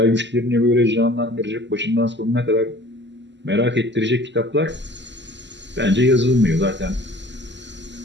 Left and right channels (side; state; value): left; late; 0.52 ms